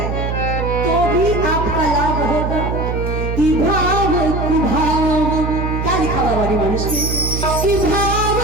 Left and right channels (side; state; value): right; noise; hum, 2 dB below the sound